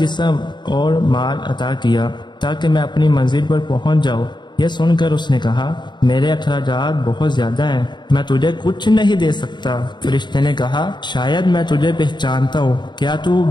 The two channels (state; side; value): late; right; 0.22 ms